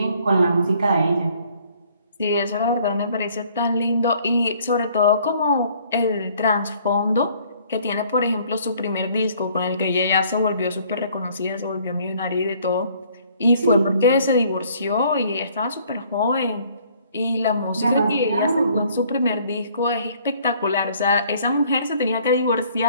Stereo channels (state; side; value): inverted; both; correlation -0.59